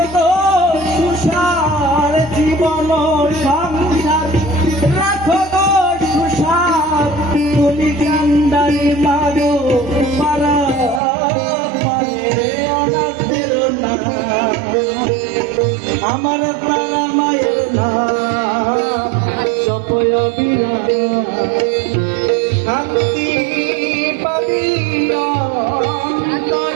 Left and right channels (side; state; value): left; drops out; at 11.0 s